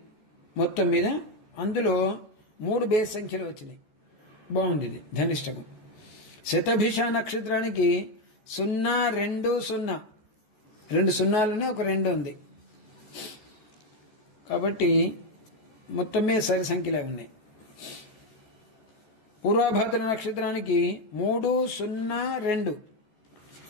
మొత్తం మీద, అందులో 3 బేస్ సంఖ్యలు వచ్చినాయి, బాగుంది ఇది ధనిష్టము. శతభిష నక్షత్రానికి 0, 2, 0 2 సున్నాలునే ఒక 2 ఉంది, కాబట్టి మొత్తం మీద సరి సంఖ్యలే ఉన్నాయి. పూర్వభద్ర నక్షత్రానికి 3, 0, 2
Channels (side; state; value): right; late; 14 ms